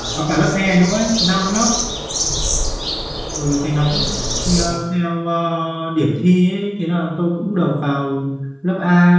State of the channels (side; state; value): both; identical; correlation 1.00